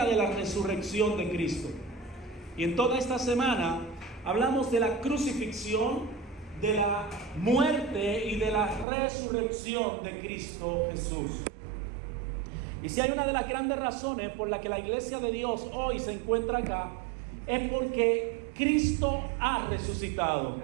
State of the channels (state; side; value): drops out; left; at 8.8 s